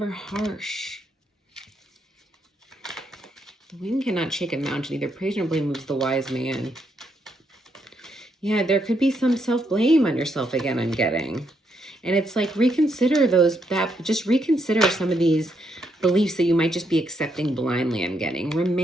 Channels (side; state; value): both; normal; correlation 0.77